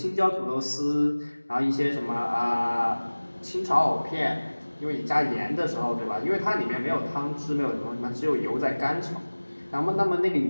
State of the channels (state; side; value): inverted; both; correlation -1.00